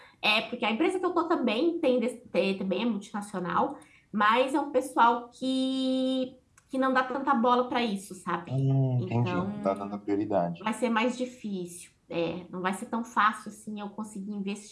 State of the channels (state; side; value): identical; both; correlation 1.00